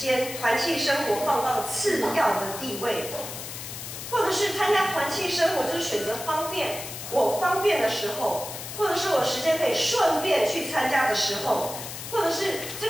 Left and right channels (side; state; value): left; noise; hiss, 9 dB below the sound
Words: 团契生活放到次要的地位，或者是参加团契生活就是选择方便，我方便的时候，或者是我时间可以顺便去参加的时候，或者是这